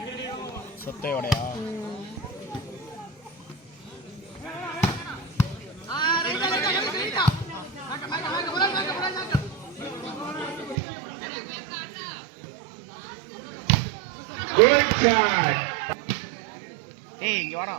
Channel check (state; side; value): drops out; left; at 10.8 s